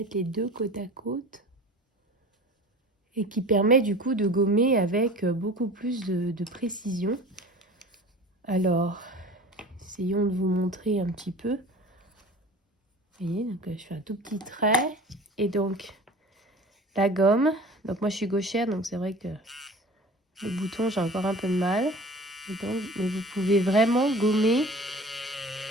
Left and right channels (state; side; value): normal; both; correlation 0.41